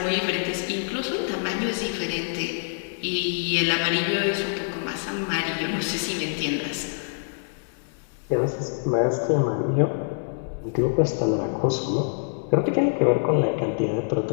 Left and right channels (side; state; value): right; silent; digital silence